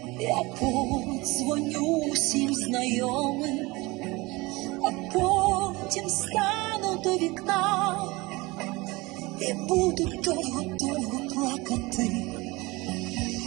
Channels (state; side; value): quieter; left; 22.9 dB